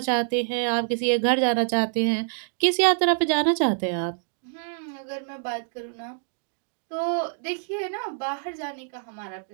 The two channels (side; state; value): left; silent; digital silence